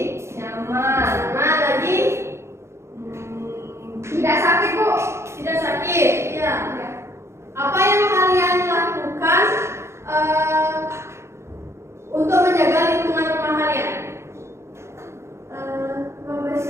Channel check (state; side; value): late; left; 0.13 ms